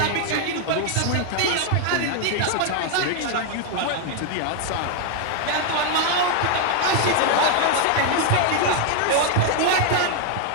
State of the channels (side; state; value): both; different; correlation 0.00